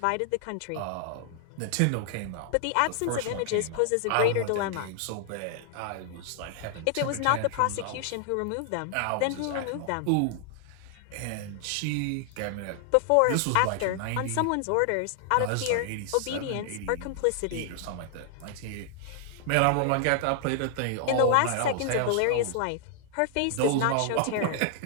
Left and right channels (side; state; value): both; different; correlation 0.00